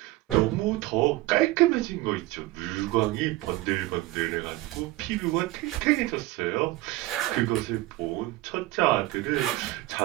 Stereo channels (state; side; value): quieter; left; 18.2 dB